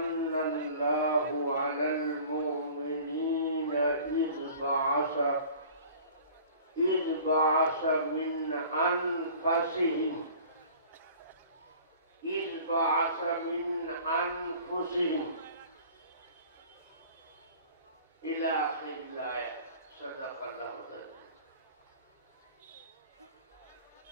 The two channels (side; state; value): both; inverted; correlation -0.46